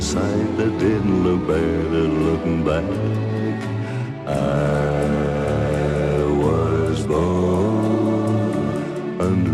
sight that didn't look better looking back. I was born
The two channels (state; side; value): identical; both; correlation 1.00